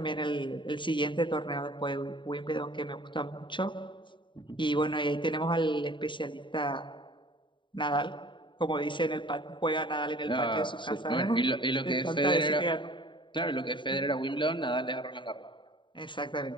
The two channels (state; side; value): late; right; 0.23 ms